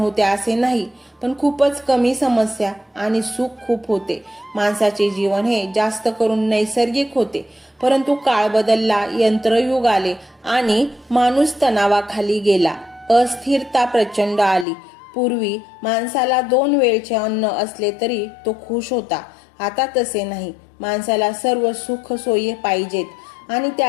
असे नाही, पण खूपच कमी समस्या आणि सुख खूप होते. माणसाचे जीवन हे जास्त करून नैसर्गिक होते. परंतु काळ बदलला, यंत्रयुग आले आणि माणूस तणावाखाली गेला. अस्थिरता प्रचंड आली. पूर्वी माणसाला 2 वेळचे अन्न असले तरी तो खुश होता. आता तसे नाही. माणसाला सर्व सुख सोयी पाहिजेत आणि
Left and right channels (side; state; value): right; drops out; at 14.7 s